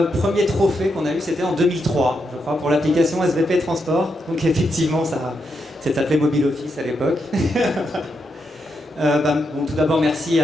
premier trophée qu'on a eu, c'était en 2003, je crois, pour l'application SVP Transport. Donc effectivement, ça s'appelait Mobile Office à l'époque. Tout d'abord, merci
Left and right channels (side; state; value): both; normal; correlation 0.82